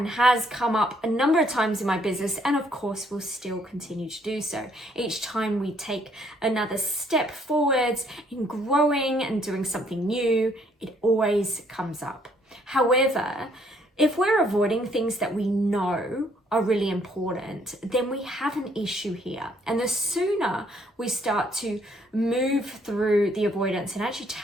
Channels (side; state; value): both; normal; correlation 0.66